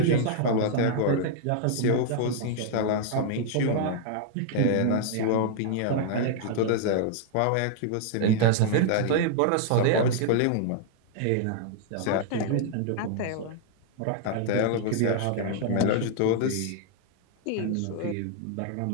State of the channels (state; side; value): different; both; correlation -0.01